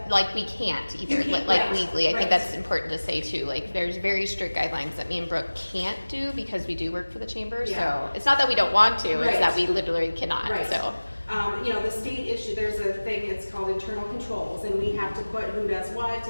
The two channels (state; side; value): inverted; both; correlation -1.00